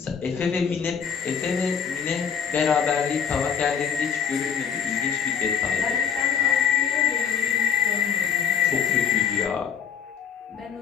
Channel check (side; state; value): right; quieter; 7.3 dB